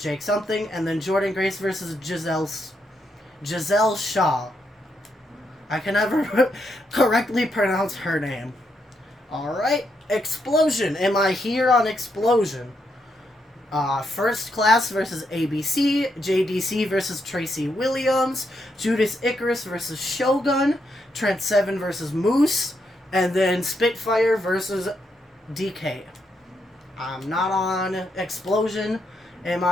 Something, and then Jordan Grace versus Giselle Shaw. I can never correctly pronounce her name. Alright, Explosion. Am I here on Explosion? First Class versus ABC, JDC versus Tracy Williams, Judas Icarus versus Shogun, Trent Seven versus Moose, and then Spitfire versus DK. I'm not on Explosion. Am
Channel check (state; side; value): normal; both; correlation 0.79